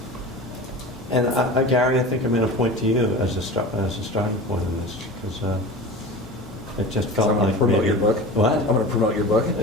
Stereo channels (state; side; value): normal; both; correlation 0.33